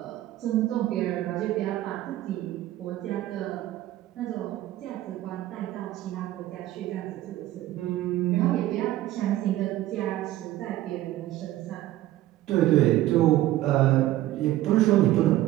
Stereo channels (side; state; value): left; quieter; 14.8 dB